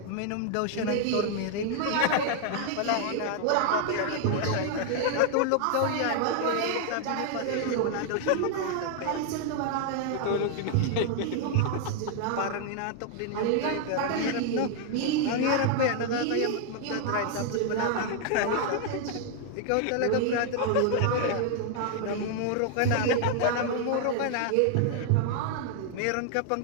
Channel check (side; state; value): both; different; correlation 0.00